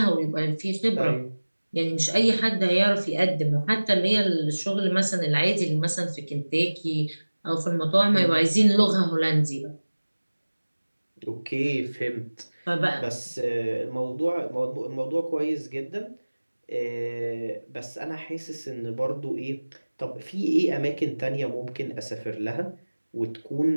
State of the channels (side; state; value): both; inverted; correlation -1.00